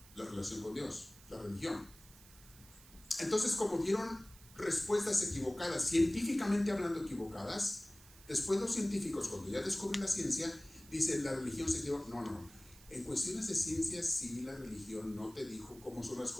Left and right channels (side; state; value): right; noise; hiss, 22 dB below the sound